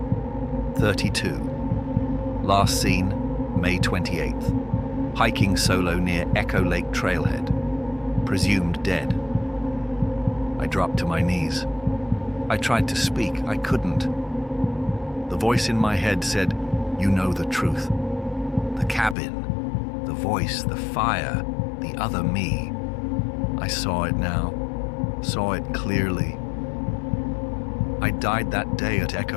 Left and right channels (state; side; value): drops out; right; at 19.2 s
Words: 32. Last seen, May 28th. Hiking solo near Echo Lake Trailhead. Presumed dead. I dropped to my knees. I tried to speak. I couldn't. The voice in my head said, "You know the truth. The cabin, the voice, the fire, the other me." I saw it now. Saw it clearly. I died that day at